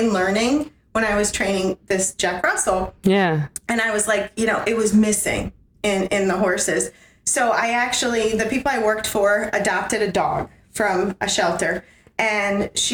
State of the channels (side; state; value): both; identical; correlation 1.00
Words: learning when I was training this Jack Russell. Yeah. And I was like, it was missing in the horses. So the people I worked for adopted a dog from a shelter, and